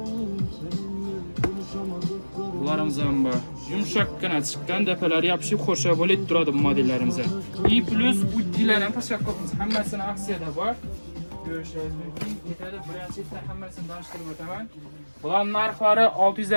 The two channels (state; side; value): inverted; both; correlation -1.00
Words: Bularimiz ham bor. Yumshoqqina chiqqan, dapalari yopishib xo'sha bo'lib turadi bu modellarimiz. И plus uddilar ham tashlab qo'yamiz. Hammasini aksiyada bor. Ko'rishingiz mumkin. Ketadi, birinchidan hammasini tanishtirib o'taman. Bular narxlari